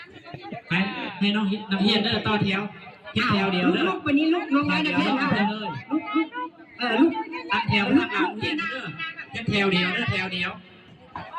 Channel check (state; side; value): identical; both; correlation 1.00